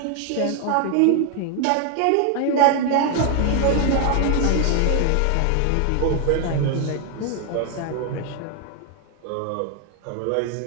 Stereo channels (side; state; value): both; different; correlation 0.00